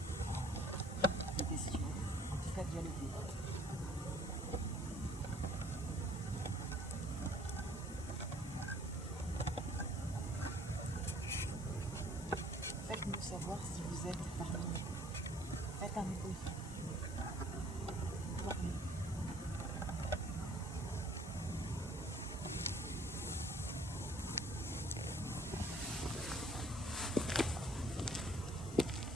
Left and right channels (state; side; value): normal; both; correlation 0.58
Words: des questions, en tout cas dialoguer. Faites-nous savoir si vous êtes parmi nous. Faites un bruit. Parlez.